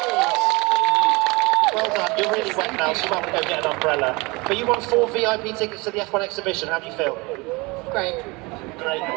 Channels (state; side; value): quieter; left; 25.6 dB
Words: Well done. You're really wet now, so you might want to go get an umbrella. But you won 4 VIP tickets to the F1 exhibition. How do you feel? Great. Great. All